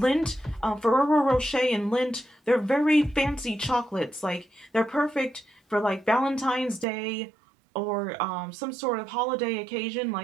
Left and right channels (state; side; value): drops out; left; at 6.9 s